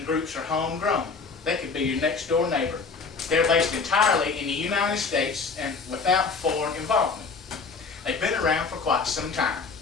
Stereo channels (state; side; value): quieter; right; 4.7 dB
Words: groups are homegrown. They could be your next door neighbor. They're based entirely in the United States and without foreign involvement. They've been around for quite some time.